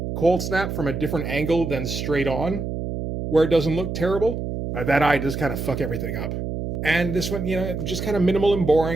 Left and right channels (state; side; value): noise; right; hum, 4 dB below the sound